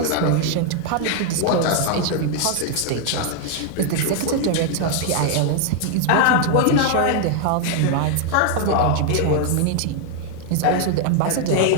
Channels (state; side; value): different; both; correlation 0.00